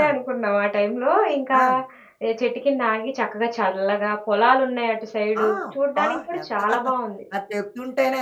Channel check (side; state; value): both; identical; correlation 1.00